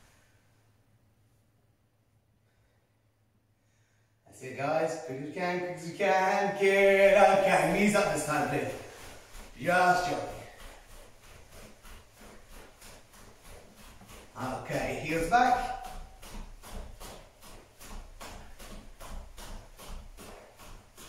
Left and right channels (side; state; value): both; identical; correlation 1.00